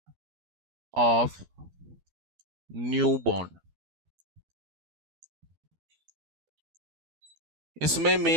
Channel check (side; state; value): left; late; 12 ms